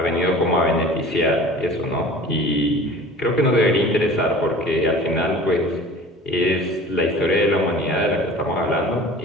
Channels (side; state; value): both; normal; correlation 0.42